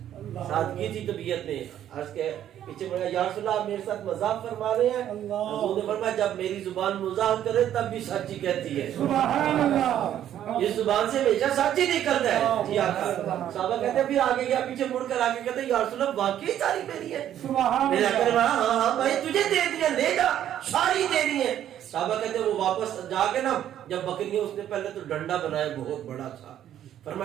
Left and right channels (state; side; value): quieter; left; 11.0 dB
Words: سادگی تھی طبیعت میں، عرض کے پیچھے بڑھا یا رسول اللہ آپ میرے ساتھ مذاق فرما رہے ہیں؟ حضور نے فرمایا جب میری زبان مذاق کرے تب بھی سچی کہتی ہے، سبحان اللہ، اس زبان سے ہمیشہ سچی نہیں کرتا ہے۔ جی آقا صحابہ کہتے ہیں پھر آگے گیا، پیچھے مڑ کر آگے کہتے ہیں یا رسول اللہ واقعی ساری میری ہے؟ سبحان میرے آقا نے اللہ، کہا ہاں ہاں بھائی تجھے دے دیا، لے جا، ساری دے دی ہے۔ صحابہ کہتے ہیں وہ واپس جا کے نا جب بکریاں، اس نے پہلے تو ڈنڈا بنایا بہت بڑا تھا،